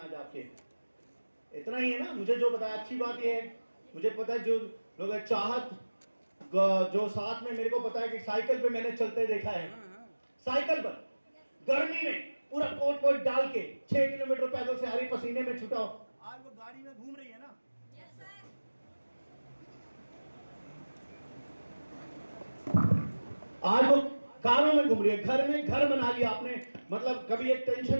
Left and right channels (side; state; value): both; inverted; correlation -1.00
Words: आपके, इतना ही है ना। मुझे जो बताया, अच्छी बात यह है, मुझे पता है जो लोग चाहत, जो साथ में मेरे को पता है कि साइकिल पे मैंने चलते देखा है, साइकिल पर गर्मी में पूरा कोट वोट डाल के 6 किलोमीटर पैदल से हरी पसीने में छुटा हो, आज वो गाड़ी में घूम रही है ना। आज वो कारों में घूम रही है, घर में घर बना लिया आपने, मतलब कभी एक